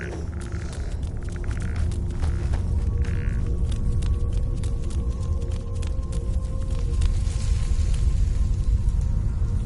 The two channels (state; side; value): identical; both; correlation 1.00